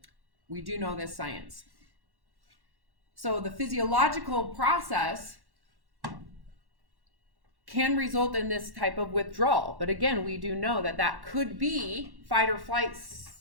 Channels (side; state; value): left; late; 1.1 ms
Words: we do know this science. So the physiological process can result in this type of withdrawal. But again, we do know that that could be fight or flight